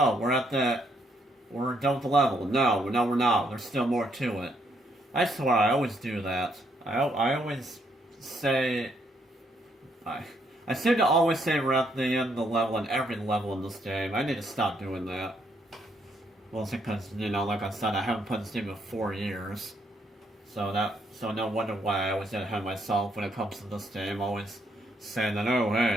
we're done with the level. No, we're not. There's still more to it. I swear, I always do that. I always say... I seem to always say we're at the end of the level in every level in this game. I need to stop doing that. Well, it's because, you know, like I said, I haven't played this game in 4 years. So no wonder why I always get ahead of myself when it comes to this game. Always saying that, oh,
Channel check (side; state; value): both; normal; correlation 0.73